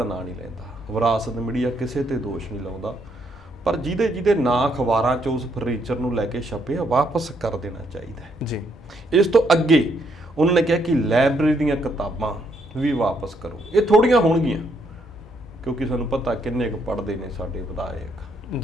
ਨਾਂ ਨਹੀਂ ਲੈਂਦਾ, ਵਿਰਾਸਤ ਮੀਡੀਆ ਕਿਸੇ ਤੇ ਦੋਸ਼ ਨਹੀਂ ਲਾਉਂਦਾ, ਪਰ ਜਿਹਦੇ ਨਾਂ ਅਖਬਾਰਾਂ 'ਚ ਉਸ ਫਰਨੀਚਰ ਨੂੰ ਲੈ ਕੇ ਛਪੇ ਵਾਪਸ ਕਰ ਦੇਣਾ ਚਾਹੀਦਾ ਜੀ। ਇਸ ਤੋਂ ਅੱਗੇ ਉਹਨਾਂ ਨੇ ਕਿਹਾ ਕਿ ਲਾਇਬ੍ਰੇਰੀ ਦੀਆਂ ਕਿਤਾਬਾਂ ਵੀ ਵਾਪਸ ਕਰੋ। ਇਹ ਥੋੜੀਆਂ ਹੋਣਗੀਆਂ ਕਿਉਂਕਿ ਸਾਨੂੰ ਪਤਾ ਕਿੰਨੇ ਕੁ ਪੜ੍ਹਦੇ ਨੇ ਸਾਡੇ ਵਿਧਾਇਕ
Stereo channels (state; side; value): normal; both; correlation 0.73